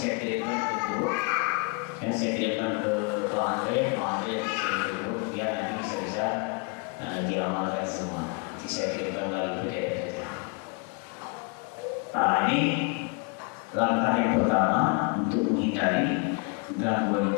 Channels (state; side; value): quieter; right; 31.9 dB